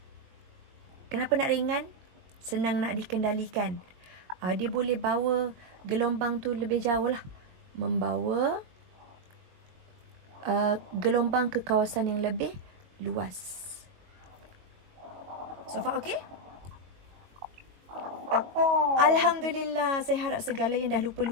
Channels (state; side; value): late; left; 21 ms